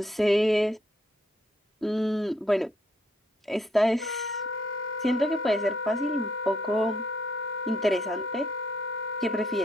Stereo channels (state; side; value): normal; both; correlation 0.72